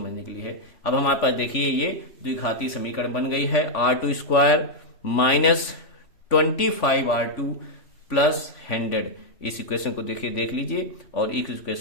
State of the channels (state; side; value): late; right; 3.0 ms